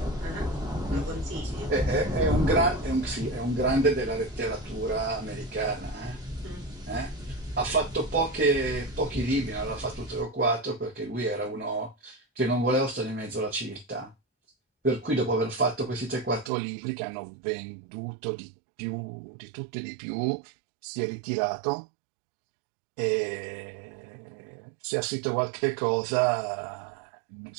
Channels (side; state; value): left; drops out; at 16.5 s